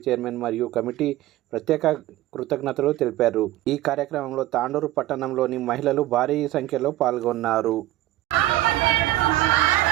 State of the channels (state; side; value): quieter; left; 15.6 dB